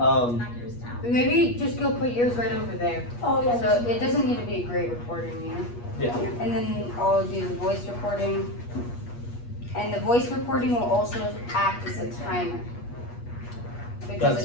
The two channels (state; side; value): late; right; 8.4 ms